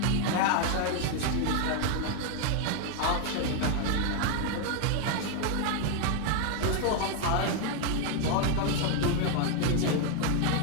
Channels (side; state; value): both; different; correlation 0.01